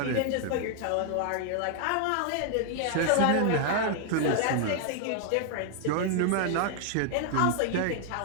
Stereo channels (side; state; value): both; different; correlation 0.00